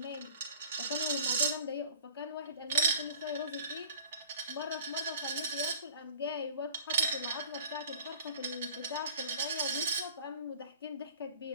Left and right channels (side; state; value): both; inverted; correlation -0.44